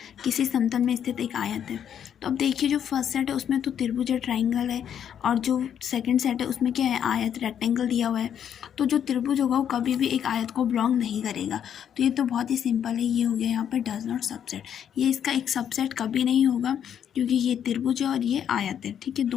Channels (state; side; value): quieter; right; 9.0 dB